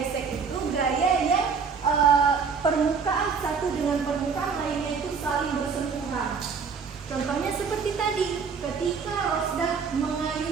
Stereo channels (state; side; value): quieter; left; 5.6 dB